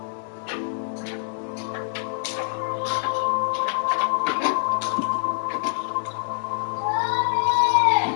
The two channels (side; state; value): right; silent; digital silence